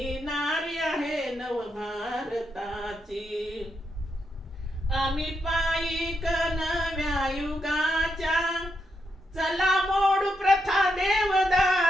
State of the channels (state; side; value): normal; both; correlation 0.82